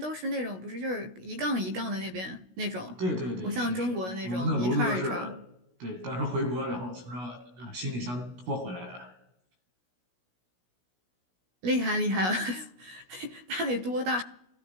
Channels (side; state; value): left; late; 16 ms